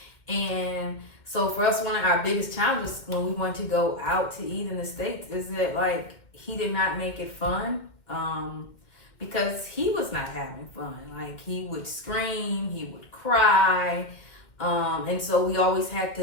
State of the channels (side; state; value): right; late; 2.1 ms